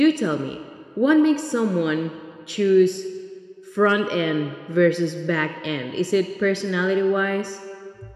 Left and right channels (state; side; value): identical; both; correlation 1.00